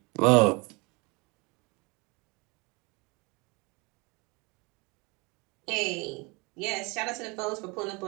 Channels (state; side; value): quieter; left; 27.9 dB